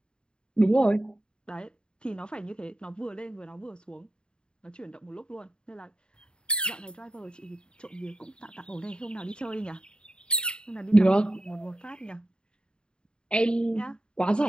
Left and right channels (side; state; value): right; late; 0.050 ms